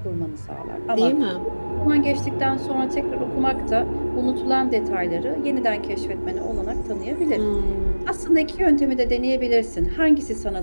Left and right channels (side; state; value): both; inverted; correlation -1.00